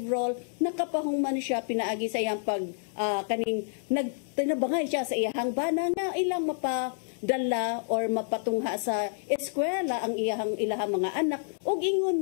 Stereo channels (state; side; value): silent; right; digital silence